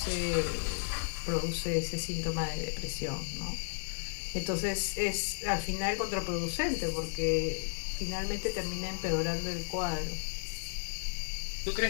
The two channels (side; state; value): right; silent; digital silence